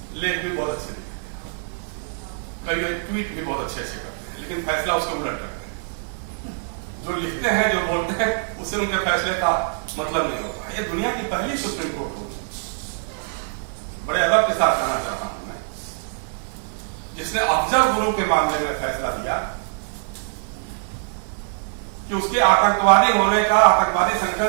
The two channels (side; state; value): left; silent; 63 dB below the other